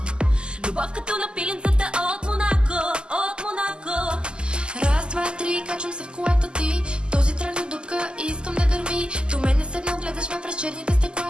Любов като на пиленцата от Монако, от Монако. Раз, два, три, качвам се в колата ти. Този трак на дупка и искам да гърми. До мен не седнал, гледаш ме през черните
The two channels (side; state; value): left; late; 0.048 ms